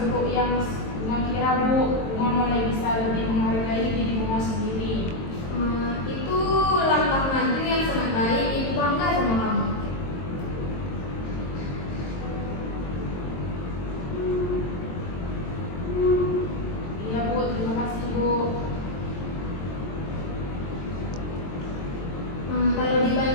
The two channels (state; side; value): late; right; 22 ms